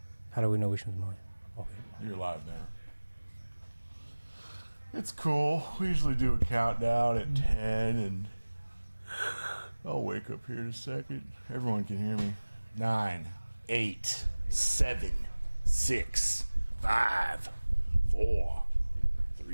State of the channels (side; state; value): both; inverted; correlation -1.00